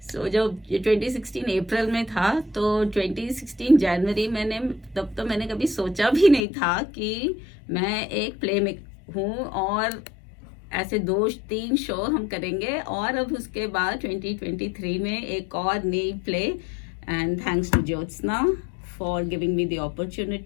सो जब 2016 अप्रैल में था, तो 2016 जनवरी तब तो मैंने कभी सोचा भी नहीं था कि मैं एक प्ले में हूँ और ऐसे 2-3 शो हम करेंगे। और अब उसके बाद 2023 में एक और नई play, and thanks to Jyotsna for giving me the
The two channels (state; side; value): drops out; right; at 6.4 s